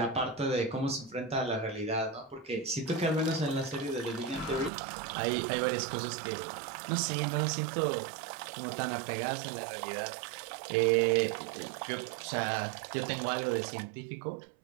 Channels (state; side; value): drops out; left; at 4.7 s